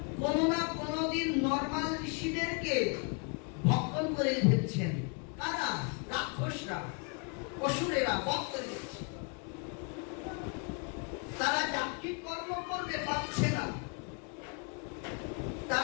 কোনো না কোনোদিন নরমাল ঋষিদেরকে ভক্ষণ করে ফেলছেন। কারা? রাক্ষসরা, অসুরেরা ভক্ষণ দিচ্ছে। তারা যান্ত্রিক কর্ম করতে পারছে না।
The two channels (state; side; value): quieter; right; 35.0 dB